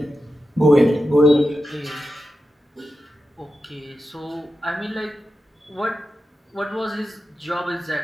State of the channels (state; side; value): normal; both; correlation 0.91